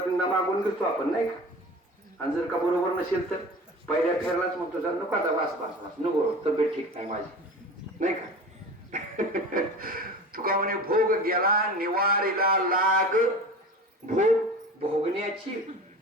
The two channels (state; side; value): normal; both; correlation 0.35